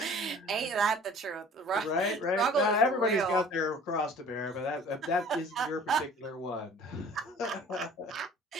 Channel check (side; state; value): both; normal; correlation 0.48